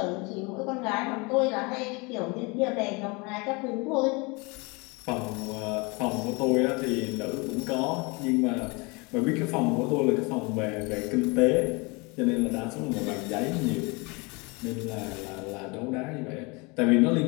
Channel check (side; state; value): right; quieter; 28.0 dB